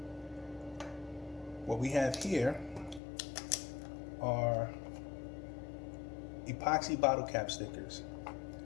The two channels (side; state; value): right; drops out; at 3.0 s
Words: what we have here are epoxy bottle cap stickers.